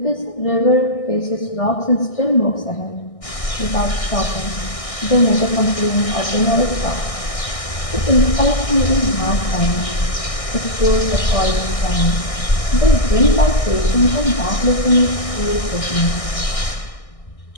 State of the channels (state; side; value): late; right; 1.6 ms